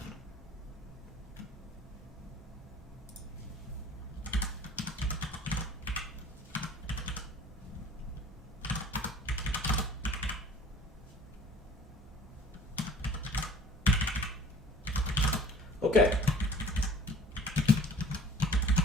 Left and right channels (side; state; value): both; normal; correlation 0.49